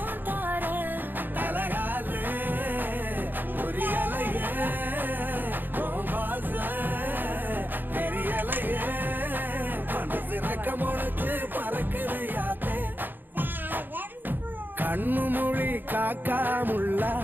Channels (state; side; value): late; left; 0.091 ms